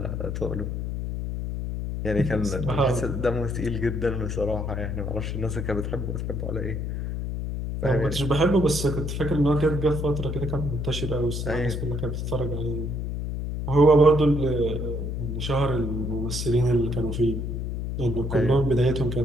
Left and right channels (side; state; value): left; noise; hum, 3 dB below the sound